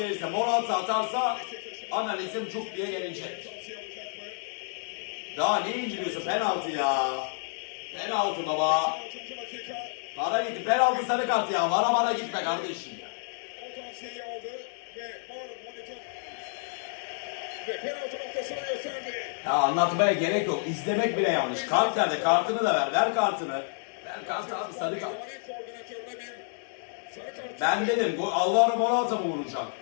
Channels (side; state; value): right; silent; digital silence